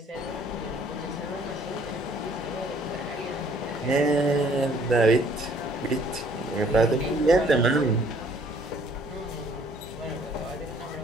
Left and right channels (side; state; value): both; normal; correlation 0.60